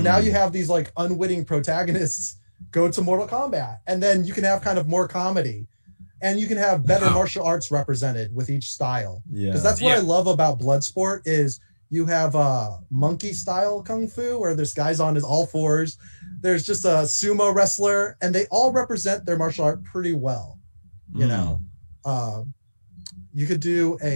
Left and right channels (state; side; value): inverted; both; correlation -1.00